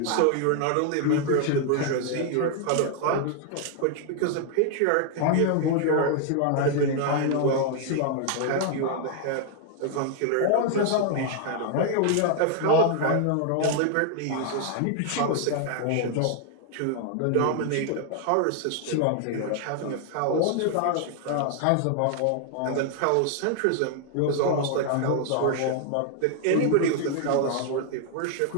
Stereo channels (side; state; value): both; different; correlation 0.00